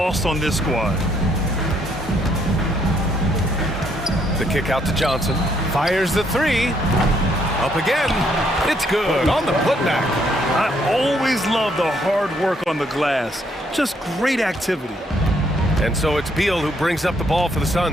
on this squad. The kick out to Johnson. Fires the 3. Up again. It's good on the putback. I always love the hard work on the glass. Just great activity. And so it's Beal who brings up the ball for the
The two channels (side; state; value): both; normal; correlation 0.70